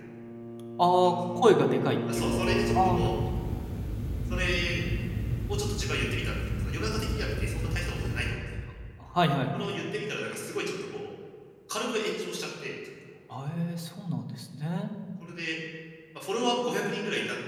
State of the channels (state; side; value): identical; both; correlation 1.00